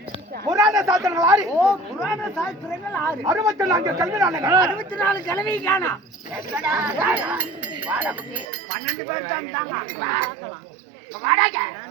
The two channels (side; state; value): left; drops out; at 8.5 s